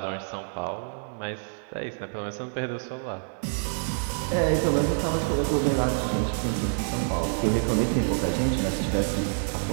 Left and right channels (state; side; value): silent; left; digital silence